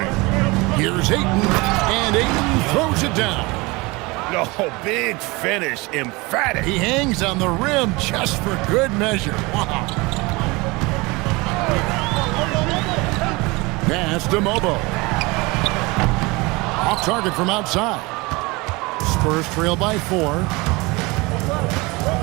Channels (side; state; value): left; quieter; 24.5 dB